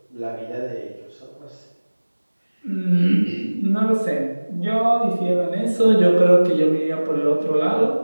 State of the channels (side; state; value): both; inverted; correlation -1.00